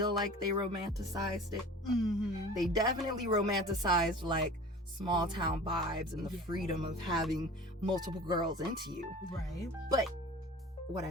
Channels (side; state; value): both; normal; correlation 0.40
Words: like they romanticized it. They definitely romanticized like small town vibes and the freedom of having multiple girls into you. But what